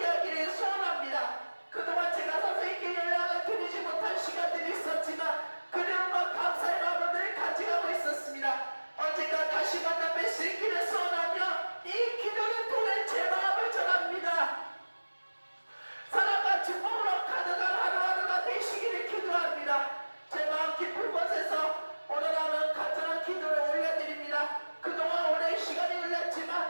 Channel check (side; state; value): both; inverted; correlation -1.00